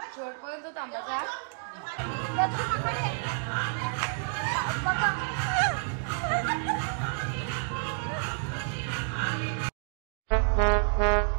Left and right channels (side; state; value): left; silent; 58 dB below the other